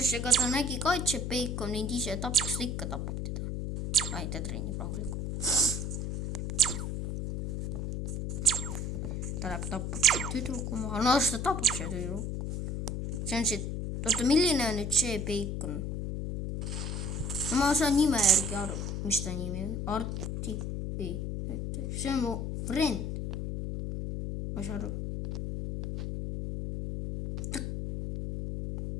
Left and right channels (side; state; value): left; noise; hum, 3 dB below the sound